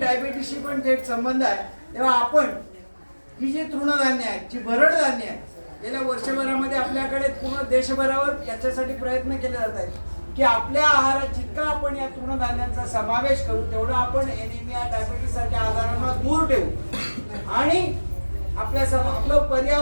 पण थेट संबंध आहे. तेव्हा आपण ही जी तृणधान्य आहेत, जी भरड धान्य आहेत, गेल्या वर्षभरामध्ये आपल्याकडे पूर्ण देशभरावर याच्यासाठी प्रयत्न केले जात आहेत की आपल्या आहारात जितका आपण या तृणधान्यांचा समावेश करू तेवढं आपण एनिमिया, डायबिटीस सारख्या आजारांना दूर ठेवू आणि आपलं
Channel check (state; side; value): inverted; both; correlation -1.00